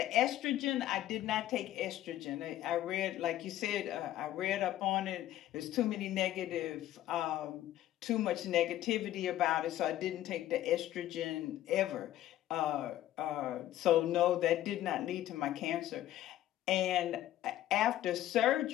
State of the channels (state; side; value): quieter; right; 13.4 dB